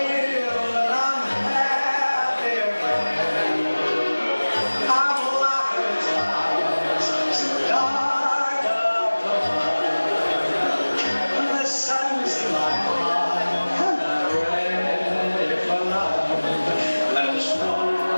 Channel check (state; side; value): inverted; both; correlation -1.00